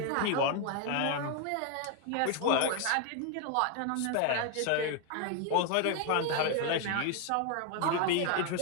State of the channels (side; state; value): both; different; correlation 0.01